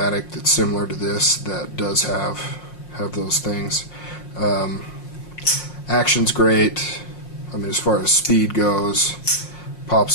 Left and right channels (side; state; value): right; late; 5.6 ms